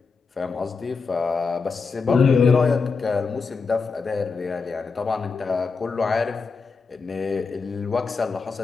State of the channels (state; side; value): quieter; right; 4.8 dB